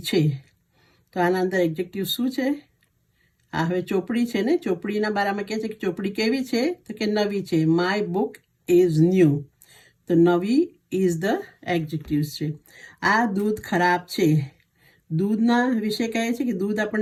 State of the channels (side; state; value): both; identical; correlation 1.00